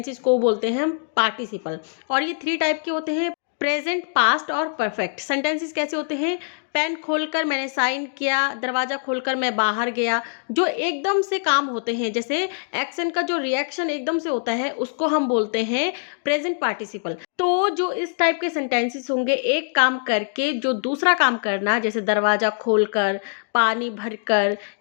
को बोलते हैं हम पार्टिसिपल। और ये 3 टाइप के होते हैं, प्रेजेंट, पास्ट और परफेक्ट। सेंटेंसेस कैसे होते हैं, पेन खोलकर मैंने साइन किया, दरवाज़ा खोलकर मैं बाहर गया। जो एकदम से काम होते हैं, जैसे एक्शन का जो रिएक्शन एकदम से होता है, उसको हम बोलते हैं प्रेजेंट पार्टिसिपल। तो जो इस टाइप के सेंटेंसेस होंगे, एक काम करके जो दूसरा काम करना, जैसे दरवाज़ा खोलकर, पानी भरकर,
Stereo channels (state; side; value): silent; right; digital silence